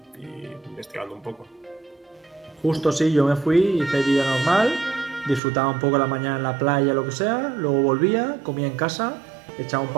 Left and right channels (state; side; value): drops out; left; at 5.4 s